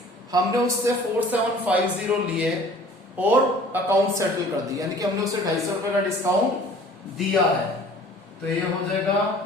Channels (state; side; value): normal; both; correlation 0.49